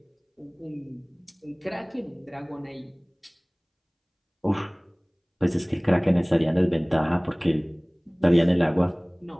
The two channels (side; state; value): both; identical; correlation 1.00